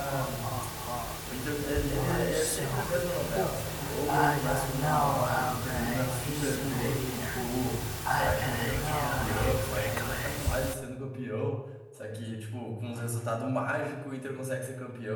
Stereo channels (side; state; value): both; identical; correlation 1.00